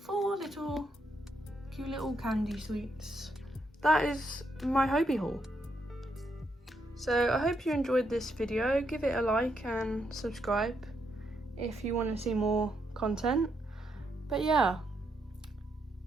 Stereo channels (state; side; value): normal; both; correlation 0.78